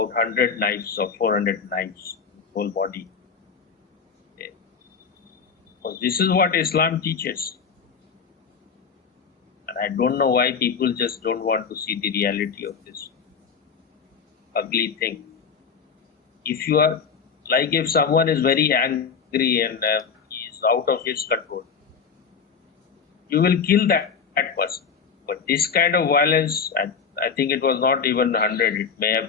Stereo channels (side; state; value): right; quieter; 6.1 dB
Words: 100 knives or 400 knives, whole body. Because this is what Islam teaches. And I don't know why people just don't want to see the reality of this ugly thing. If you are, like if someone is very angry and he is out of his control, you will kill that person. But this kind of violence, I think it was not even 100, it may